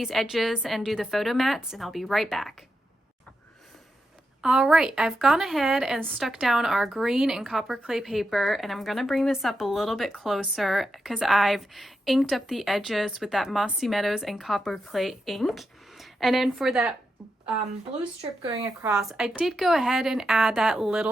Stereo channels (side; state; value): both; normal; correlation 0.86